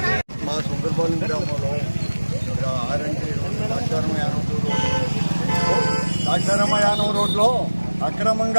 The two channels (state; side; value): inverted; both; correlation -1.00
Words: మా సుందరపాలెం గ్రామంలో ద్రాక్షారామయానం రోడ్లో